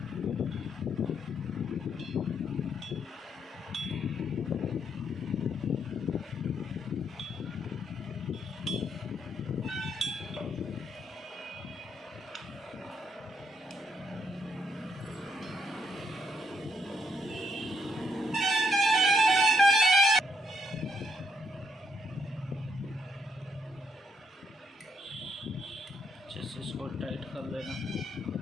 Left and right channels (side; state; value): both; normal; correlation 0.75